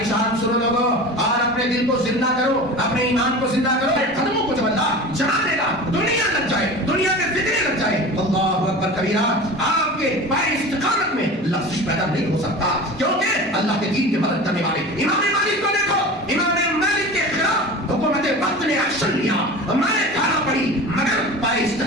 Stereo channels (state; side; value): normal; both; correlation 0.34